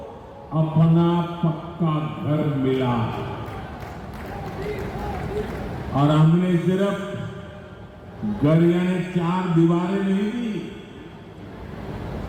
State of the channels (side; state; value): both; identical; correlation 1.00